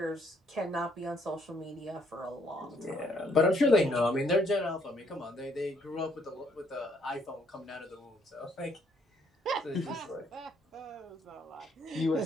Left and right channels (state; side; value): normal; both; correlation 0.68